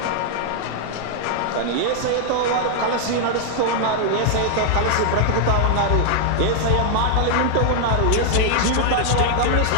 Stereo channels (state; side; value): different; both; correlation 0.00